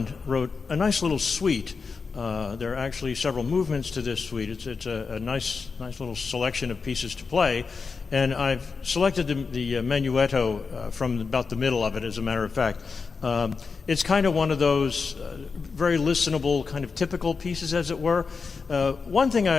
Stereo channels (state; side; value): quieter; right; 5.0 dB